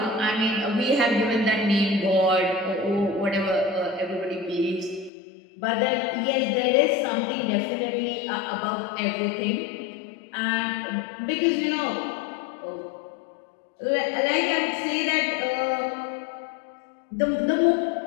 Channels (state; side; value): drops out; right; at 5.1 s